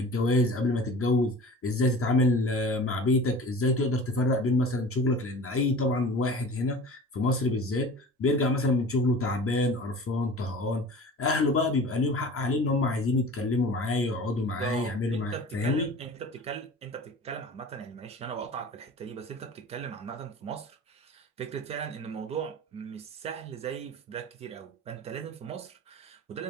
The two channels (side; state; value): both; normal; correlation 0.39